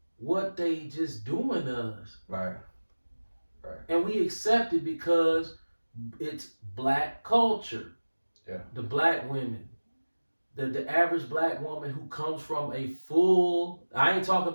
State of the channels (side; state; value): both; inverted; correlation -1.00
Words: what they just doing to us. Right. Right. And we accept it because it's black culture. Yeah. The black women. The average black woman who comes from a full, I ain't talking